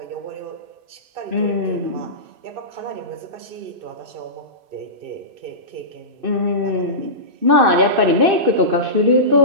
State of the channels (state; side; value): late; left; 2.6 ms